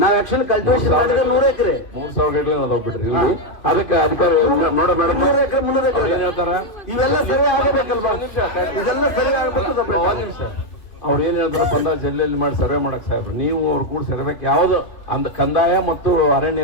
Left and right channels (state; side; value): late; right; 2.5 ms